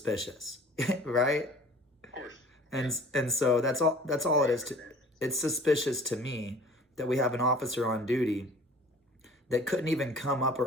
right? Of course. And so that's all it is. It's suspicious to me that we have an officer on duty that couldn't even come up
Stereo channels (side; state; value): both; normal; correlation 0.48